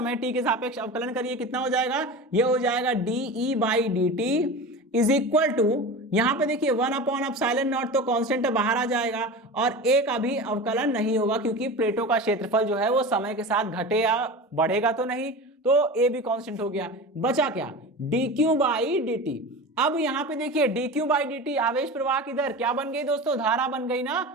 t के सापेक्ष अवकलन करिए, कितना हो जाएगा, ये हो जाएगा dE/dt = यहां पे देखिए 1/ε0 तो कांस्टेंट बाहर आ जाएगा, और a का भी अवकलन नहीं होगा क्योंकि प्लेटों का क्षेत्रफल जो है वो समय के साथ घटे या बढ़ेगा तो नहीं, तो a भी कांस्टेंट हो गया। बचा क्या, dQ/dt। अब यहाँ पे देखिए dQ/dt आवेश प्रवाह की दर क्या बन गई दोस्तों, धारा बन गई ना,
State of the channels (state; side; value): normal; both; correlation 0.30